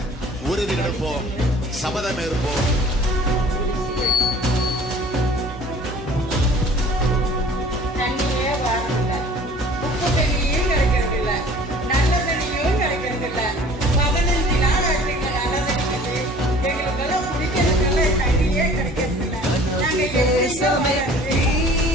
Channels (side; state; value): both; normal; correlation 0.49